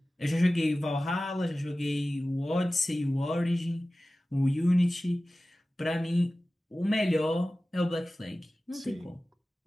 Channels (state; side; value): normal; both; correlation 0.96